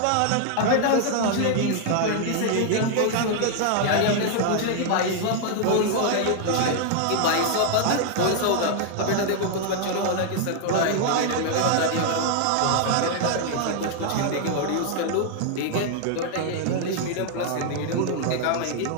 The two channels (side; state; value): both; different; correlation 0.00